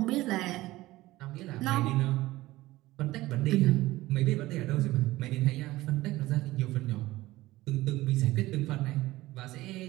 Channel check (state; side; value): quieter; left; 17.8 dB